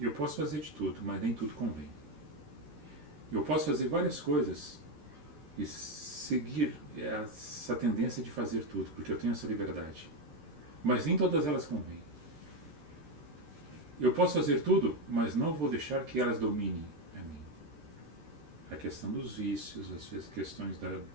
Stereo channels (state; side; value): late; left; 13 ms